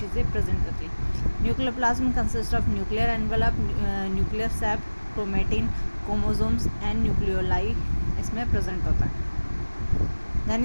प्रेजेंट होती हैं। Nucleoplasm consist of nuclear envelope, nuclear sap, chromatin, chromosomes and nucleoli इसमें present होता है।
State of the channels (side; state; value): both; inverted; correlation -1.00